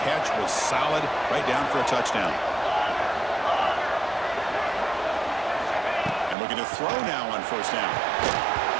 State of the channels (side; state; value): left; drops out; at 6.4 s